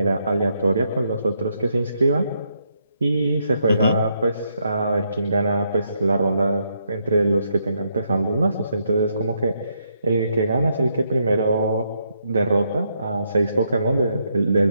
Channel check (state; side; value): inverted; both; correlation -0.77